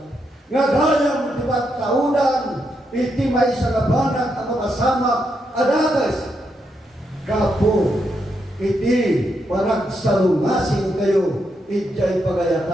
Nga gayang ti pagkaunan, iti may sagabanag ang makasamak, adagas, kapo, iti panagsalungasing kayo, ijay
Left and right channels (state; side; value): normal; both; correlation 0.81